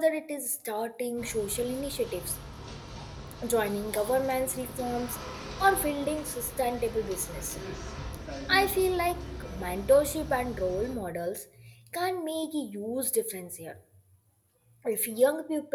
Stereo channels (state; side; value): identical; both; correlation 1.00